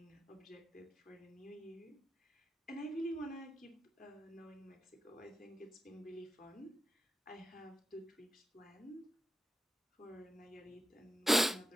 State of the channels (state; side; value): normal; both; correlation 0.87